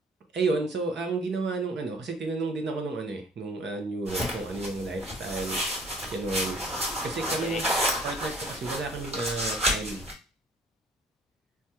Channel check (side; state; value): both; normal; correlation 0.55